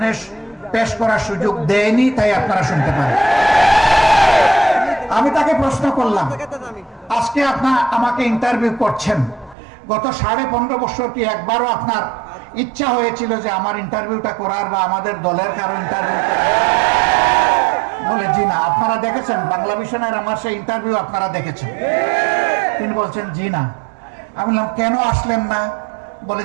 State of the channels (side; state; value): left; drops out; at 9.6 s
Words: পেশ করার সুযোগ দেয়নি, তাই আপনারা শুনতে পারেন। আমি তাকে প্রশ্ন করলাম, আজকে আপনার আমাকে ইন্টারভিউ করছেন, গত 15.5 বছর কি একবারও আপনার ইচ্ছা হয়েছিল যে আমার ইন্টারভিউটা করার বা আমাদের দলের কারো ইন্টারভিউ? বলে জি না। আপনারা দেখেছেন বাংলা ভিশনের আমার সেই ইন্টারভিউ? আপনারা দেখেছেন? তিনি বলছেন জি না। আমি বললাম কেন আসলেন না? বলে